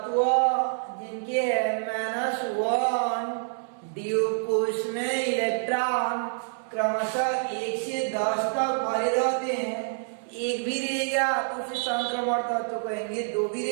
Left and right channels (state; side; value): silent; left; 60 dB below the other